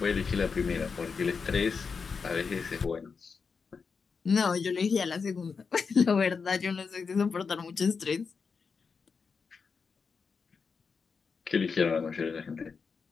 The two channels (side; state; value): right; quieter; 5.3 dB